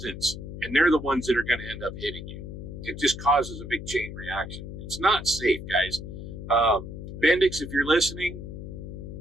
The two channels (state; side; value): noise; left; hum, 9 dB below the sound